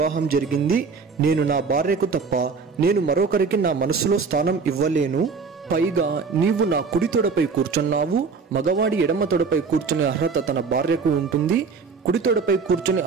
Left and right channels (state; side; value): quieter; left; 5.1 dB